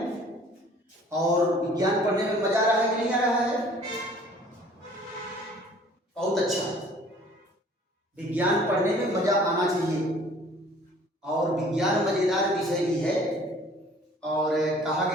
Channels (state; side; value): normal; both; correlation 0.53